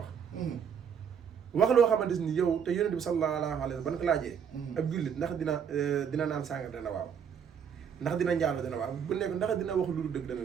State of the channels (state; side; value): quieter; left; 7.5 dB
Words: loo xamante ni yow te yonent bi sallallahu alayhi wa sallam ban ko laajee ab jullit ndax dina naan sàngar dana waaw ndax dina njaalo dana waaw bu nekk ndax dina wax lu dul dëgg dana